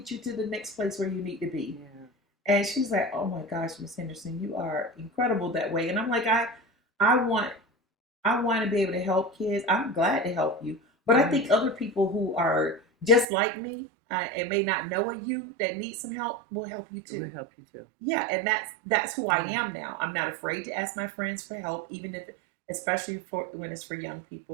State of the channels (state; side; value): drops out; left; at 13.2 s